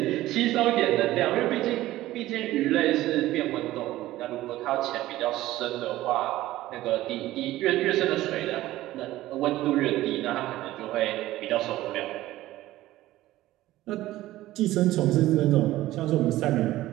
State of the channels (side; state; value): left; quieter; 15.9 dB